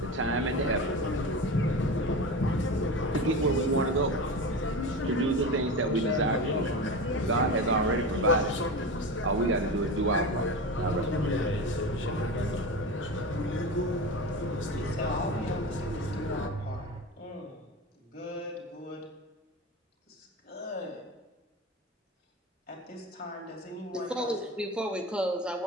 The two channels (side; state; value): both; normal; correlation 0.26